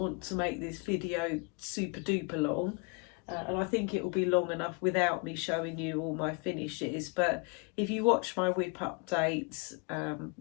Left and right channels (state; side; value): quieter; right; 34.2 dB